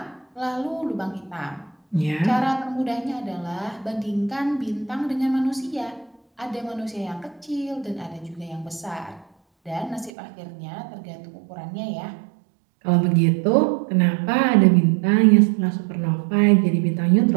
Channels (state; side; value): drops out; left; at 10.1 s